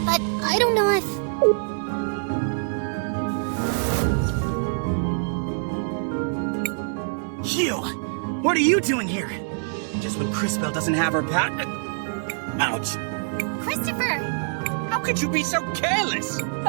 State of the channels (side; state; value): left; silent; 57 dB below the other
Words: but I don't know if... You! What are you doing here? Just when Crisbell doesn't have her ouch! Christopher! How could you be so careless?